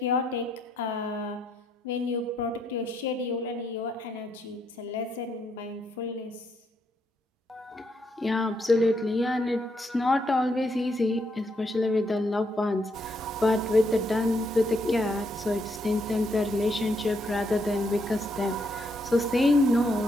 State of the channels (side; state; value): both; normal; correlation 0.76